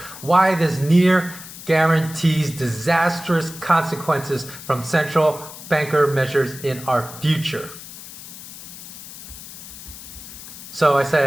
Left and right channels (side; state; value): left; noise; hiss, 14 dB below the sound